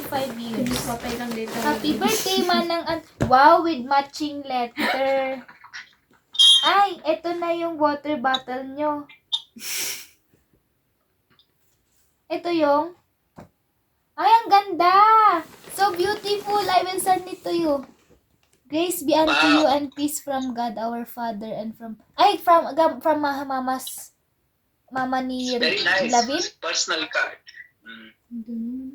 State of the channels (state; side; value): identical; both; correlation 1.00